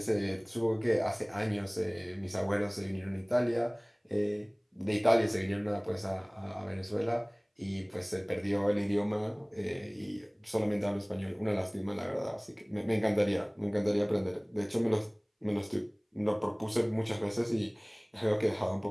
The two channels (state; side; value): identical; both; correlation 1.00